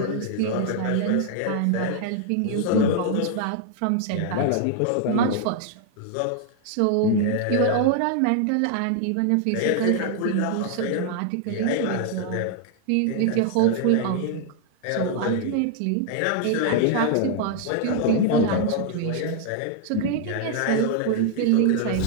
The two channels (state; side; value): different; both; correlation 0.00